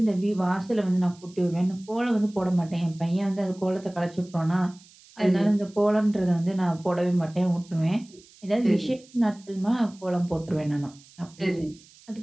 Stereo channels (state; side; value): noise; right; hiss, 25 dB below the sound